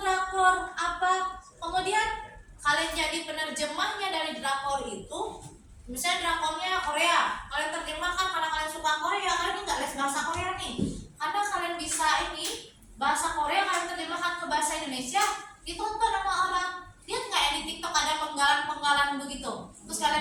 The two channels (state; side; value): identical; both; correlation 1.00